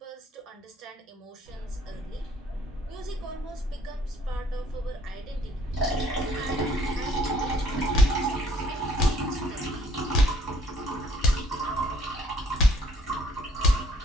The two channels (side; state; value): both; normal; correlation 0.61